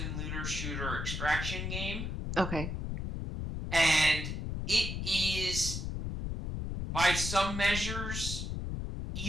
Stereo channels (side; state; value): left; noise; rumble, 3 dB below the sound